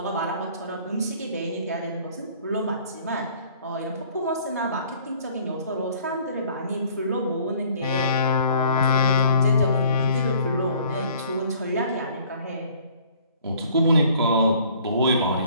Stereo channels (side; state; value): both; inverted; correlation -0.55